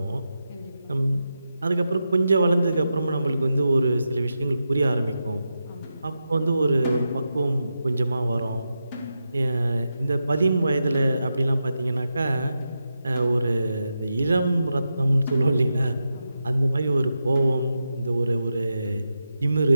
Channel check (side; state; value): both; inverted; correlation -0.89